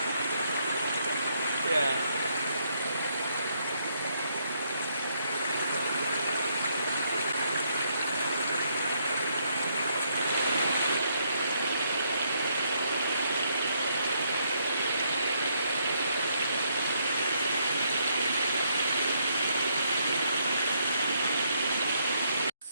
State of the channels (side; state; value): both; inverted; correlation -0.73